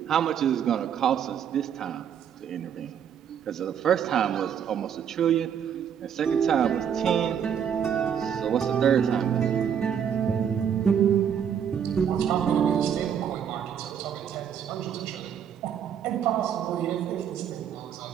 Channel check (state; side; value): quieter; left; 8.4 dB